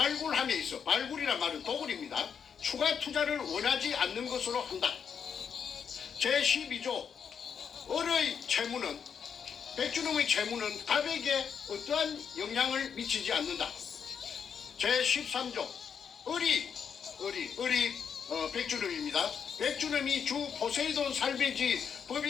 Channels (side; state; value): right; quieter; 7.1 dB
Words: 있어, 발굴이란 말은 도굴입니다. 추가 투자를 원하지 않는 것으로 한다. 제12조 을의 채무는, 백준음의 채무는 갑에게 어떠한 영향을 미치지 않는다. 제13조 을이 백준음입니다. 백준음이 주 포세이돈 살베이지